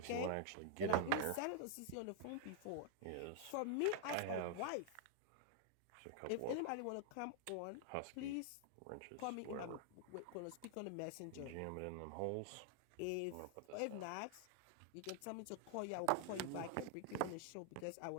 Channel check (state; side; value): different; both; correlation 0.00